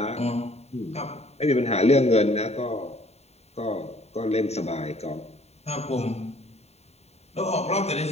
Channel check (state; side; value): late; right; 0.31 ms